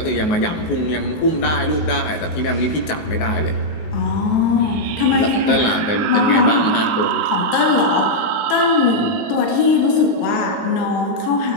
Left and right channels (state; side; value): late; right; 19 ms